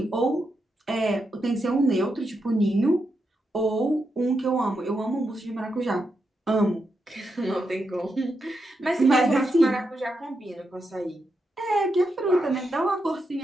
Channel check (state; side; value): normal; both; correlation 0.84